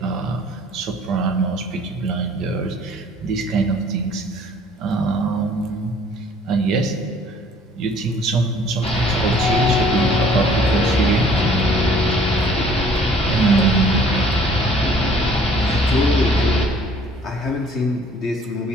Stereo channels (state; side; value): normal; both; correlation 0.55